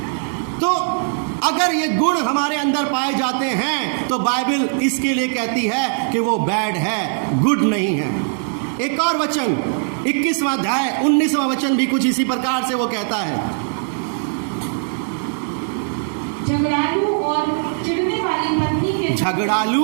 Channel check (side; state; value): left; silent; 66 dB below the other